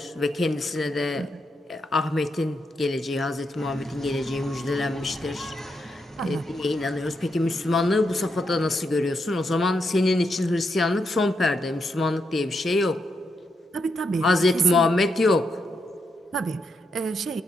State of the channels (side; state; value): both; normal; correlation 0.82